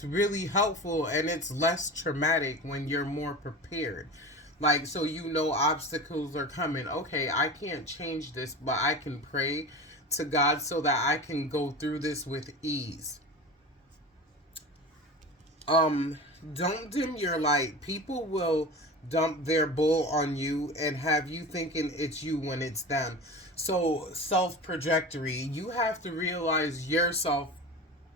really helpful, and it's less traumatic when you're more prepared. Like, so you know obstacles are coming. Okay, I can't change this, but I can pray to God so that I can go through this with ease. um don't dim your light. People will dump their bull on you and have you thinking it's you when it's them. So self trajectory, you have to realize your self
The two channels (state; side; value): normal; both; correlation 0.32